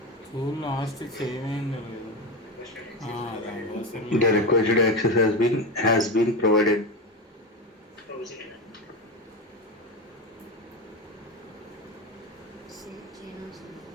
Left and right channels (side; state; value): both; normal; correlation 0.18